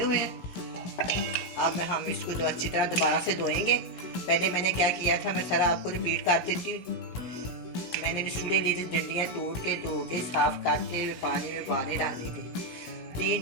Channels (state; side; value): late; right; 17 ms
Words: हैं। अब हम इसको अच्छी तरह दोबारा से धोएंगे। पहले मैंने क्या किया था मैं सारा आपको रिपीट कर देती हूँ। मैंने निसूरे लिए थे, डंडियाँ तोड़ के धो के साफ करके पानी में उबाले डाल दी थी।